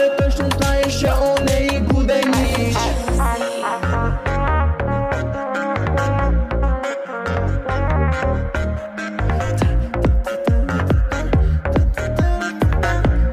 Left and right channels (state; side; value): identical; both; correlation 1.00